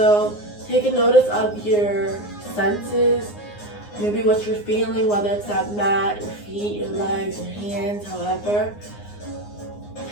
take a notice of your senses, maybe what you're feeling, whether it's that mat, your feet, your legs, your hands, however.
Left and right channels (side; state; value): right; late; 9.6 ms